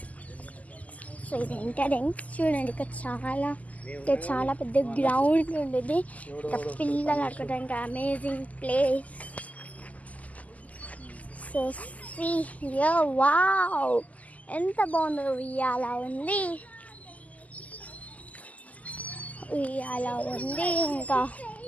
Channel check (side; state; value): right; late; 0.074 ms